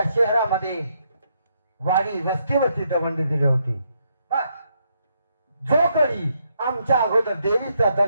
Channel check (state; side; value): inverted; both; correlation -0.76